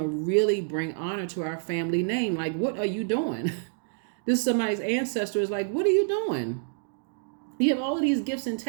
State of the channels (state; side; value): silent; left; digital silence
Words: really bring honor to our family name. Like, what are you doing? This is somebody's ancestor is like, what are you doing? You have all of these gifts and